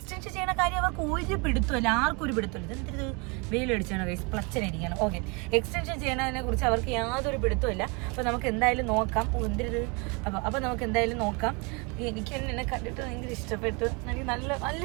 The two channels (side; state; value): left; quieter; 30.6 dB